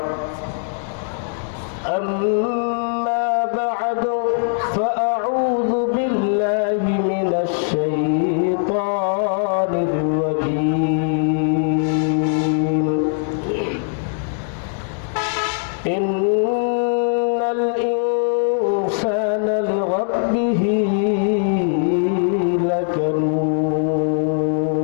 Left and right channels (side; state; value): right; silent; digital silence